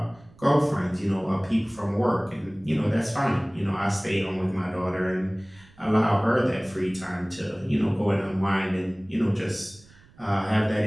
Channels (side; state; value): right; noise; rumble, 26 dB below the sound